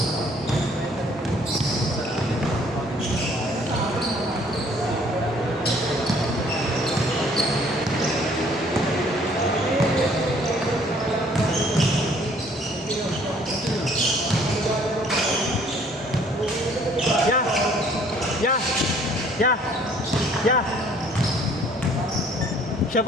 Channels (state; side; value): normal; both; correlation 0.59